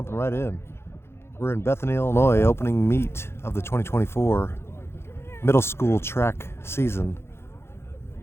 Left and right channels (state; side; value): late; right; 0.12 ms